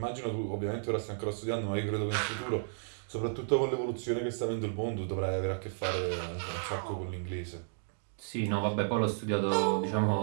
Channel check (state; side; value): silent; left; digital silence